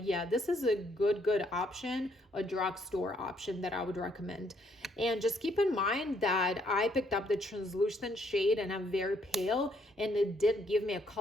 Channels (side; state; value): both; normal; correlation 0.70